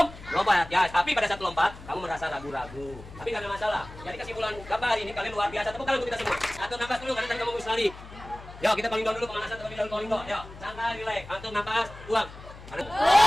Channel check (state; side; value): noise; left; hum, 16 dB below the sound